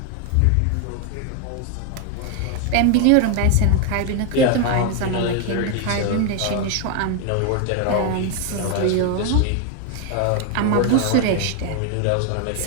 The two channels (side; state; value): both; different; correlation 0.01